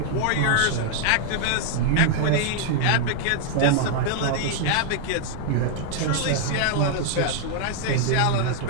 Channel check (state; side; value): different; both; correlation -0.01